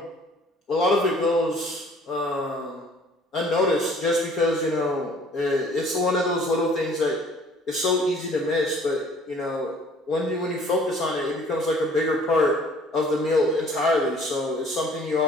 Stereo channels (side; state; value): both; normal; correlation 0.54